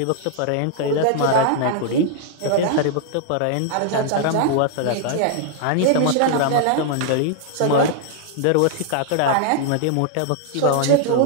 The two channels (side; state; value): both; different; correlation -0.01